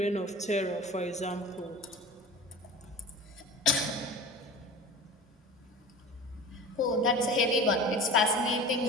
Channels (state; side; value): normal; both; correlation 0.36